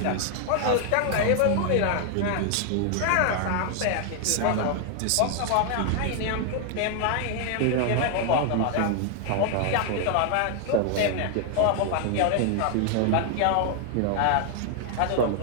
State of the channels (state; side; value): different; both; correlation 0.00